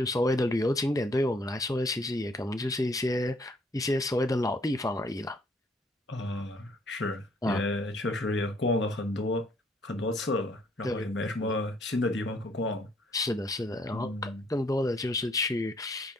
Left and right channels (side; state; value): both; normal; correlation 0.65